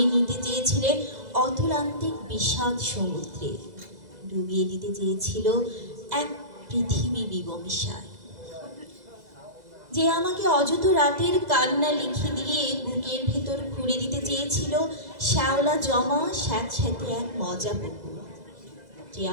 নিতে চেয়েছিলেন অতুলান্তিক বিষাদ সমুদ্রে, ডুবিয়ে দিতে চেয়েছিল এক পৃথিবী বিবমিশায়। যে আমাকে অযথ রাতের কান্না লিখে দিয়ে বুকের ভেতর খুঁড়ে দিতে চেয়েছিল শ্যাওলা জমা স্যাঁতস্যাঁতে এক মজা পুকুর। যে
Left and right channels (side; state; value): left; late; 2.0 ms